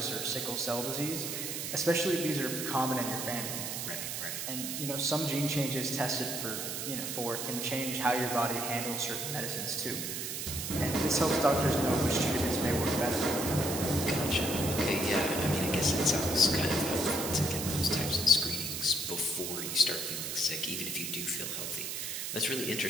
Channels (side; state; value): right; noise; hiss, 4 dB below the sound